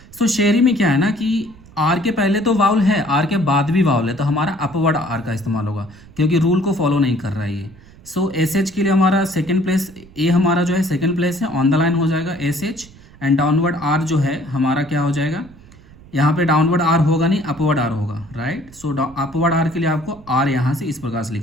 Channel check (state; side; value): noise; right; rumble, 23 dB below the sound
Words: सो शेरी में क्या है ना कि आर के पहले तो वाउल है, आर के बाद भी वाउल है, तो हमारा अपवर्ड आर का इस्तेमाल होगा क्योंकि रूल को फॉलो नहीं कर रहा है ये। सो SH के लिए हमारा सेकंड प्लेस, ए हमारा जो है सेकंड प्लेस है, ऑन द लाइन हो जाएगा SH, एंड डाउनवर्ड आर जो है हमारा क्या हो जाएगा, यहाँ पे डाउनवर्ड आर होगा नहीं, अपवर्ड आर होगा, राइट। सो अपवर्ड आर के लिए आपको आर यहाँ से इस प्रकार से